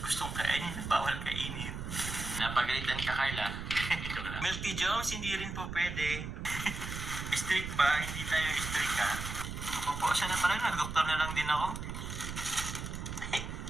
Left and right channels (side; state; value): right; noise; rumble, 6 dB below the sound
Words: gustong kainin na bawal kainin. Napagalitan ka Carla. Joke lang. Milk Tea Jones, hindi rin po pwede. Strict ba? Hindi tayo strict ha. Naku po, sana pala nag-doktor na lang din ako.